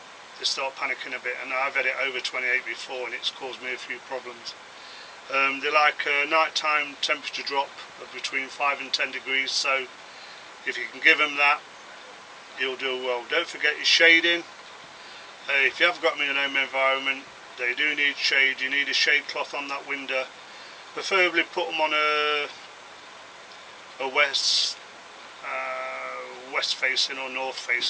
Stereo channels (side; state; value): both; identical; correlation 1.00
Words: They start panicking a bit, and I've had it over 28 before, and it's caused me a few problems. They like a nighttime temperature drop of between 5 and 10 degrees, so if you can give them that, you'll do well. Don't forget your shading. If you have got them in an home environment, they do need shade. You need a shade cloth on that window. Preferably put them on a west facing or north